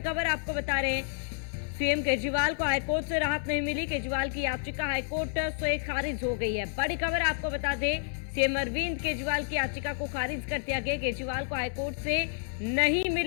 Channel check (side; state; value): right; silent; digital silence